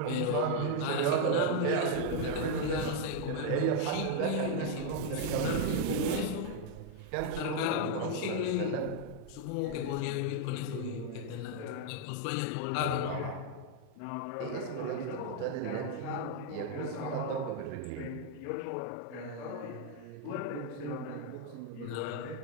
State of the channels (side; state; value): both; different; correlation 0.00